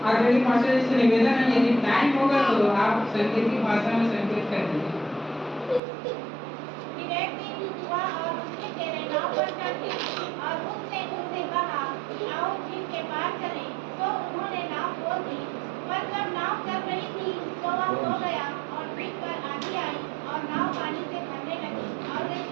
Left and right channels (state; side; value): drops out; left; at 5.8 s